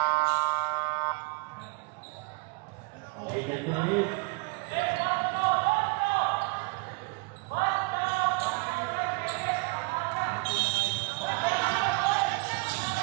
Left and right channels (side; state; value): left; quieter; 27.6 dB